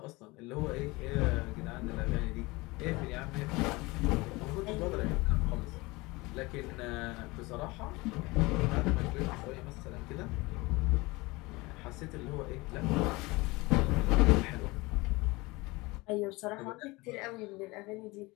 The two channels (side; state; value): right; quieter; 23.1 dB